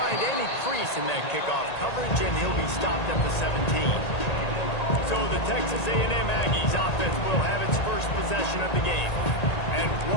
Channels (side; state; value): right; late; 1.8 ms